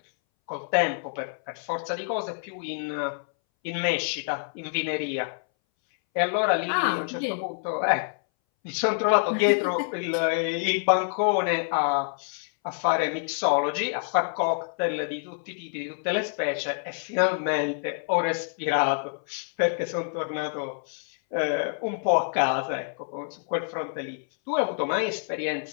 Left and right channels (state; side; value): silent; right; 60 dB below the other